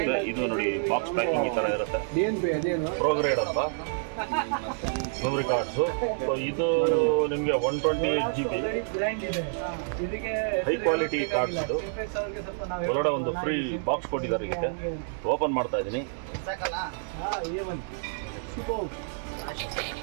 ಇದು ನೋಡಿ, ಬಾಕ್ಸ್ ಪ್ಯಾಕಿಂಗ್ ಈ ಥರ ಇರುತ್ತೆ. ಪ್ರೋಗ್ರೇಡ್ ಅಂತ ಮೆಮೊರಿ ಕಾರ್ಡ್ಸು. ಸೊ ಇದು ನಿಮಗೆ 128 GB ಹೈ ಕ್ವಾಲಿಟಿ ಕಾರ್ಡ್ಸ್. ಇದು ಒಳಗಡೆ ಒಂದು ಫ್ರೀ ಬಾಕ್ಸ್ ಕೊಟ್ಟಿದ್ದಾರೆ. ಇದಕ್ಕೆ ಓಪನ್ ಮಾಡ್ತಾ ಇದ್ದೀನಿ.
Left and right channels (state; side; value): silent; left; digital silence